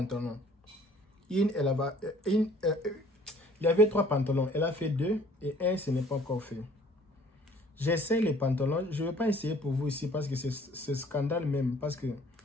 Il y avait 3 pantalons. Elle a fait 2 et 1, ce n'est pas encore fait. J'essaie les pantalons. Je ne vais pas essayer pour vous ici parce que c'est scandale même. Parce que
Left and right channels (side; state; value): both; normal; correlation 0.55